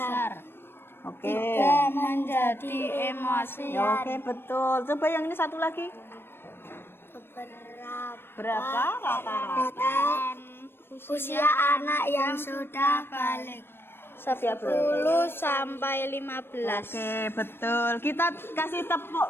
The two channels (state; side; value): late; right; 0.11 ms